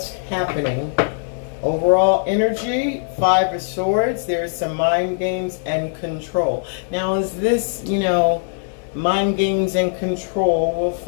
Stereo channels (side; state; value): right; silent; digital silence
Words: happening? Overall energy, 5 of Swords, there's some mind games and control. Now, is this, mind games and control? We'll